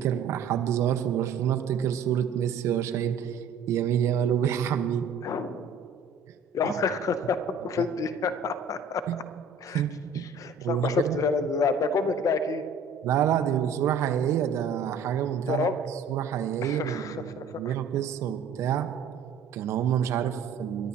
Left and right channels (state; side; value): quieter; left; 4.0 dB